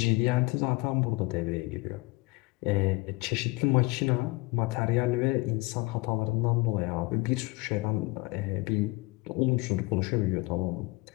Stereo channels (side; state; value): right; quieter; 24.5 dB